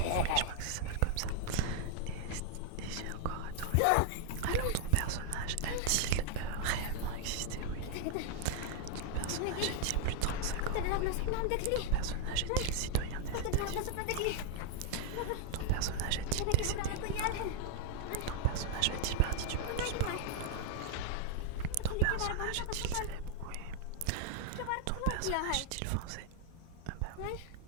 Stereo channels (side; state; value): both; different; correlation 0.00